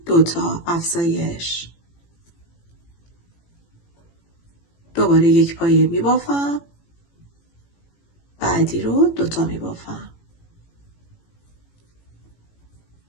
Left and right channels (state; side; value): late; right; 18 ms